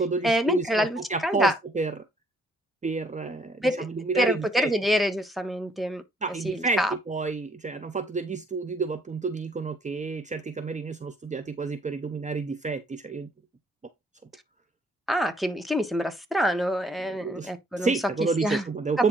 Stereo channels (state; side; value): normal; both; correlation 0.65